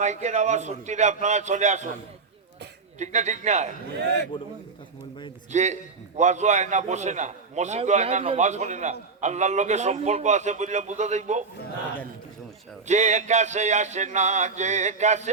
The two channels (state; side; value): quieter; left; 4.5 dB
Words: আওয়াজ সত্যি আপনারা চলে আসুন, ঠিক না? ঠিক না? যে ওয়াজও হয় না, বসে না, মসজিদও হয় না, নামাজ পড়ে না, আল্লাহর লোকের সম্পর্ক আছে বললে বুঝা যাইব। যে কাছে আসে না, যে কাছে